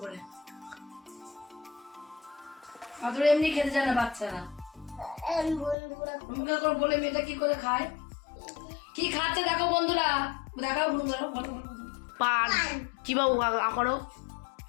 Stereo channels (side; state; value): right; drops out; at 5.8 s